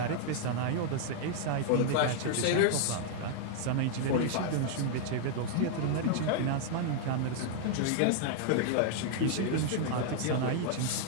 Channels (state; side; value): different; both; correlation 0.00